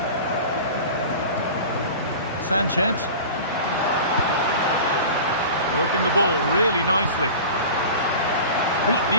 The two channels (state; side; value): inverted; both; correlation -0.35